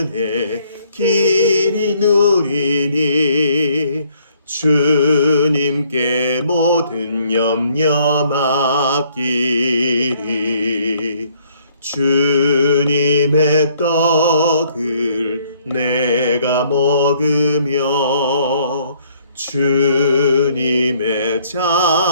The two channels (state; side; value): inverted; both; correlation -0.64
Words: 길이 누리니 주님께 모든 염려 맡기리 주님의 떡을 내가 먹으며 주님의